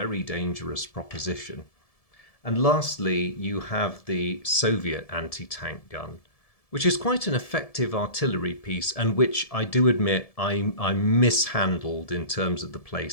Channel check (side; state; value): right; late; 1.7 ms